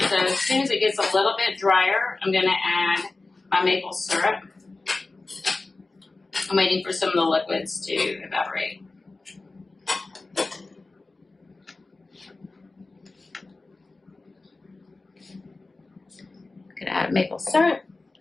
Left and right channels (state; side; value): quieter; right; 3.4 dB